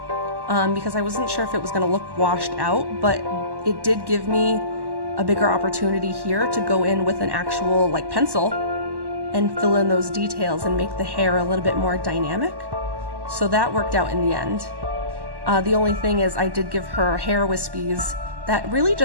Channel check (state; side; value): late; left; 1.1 ms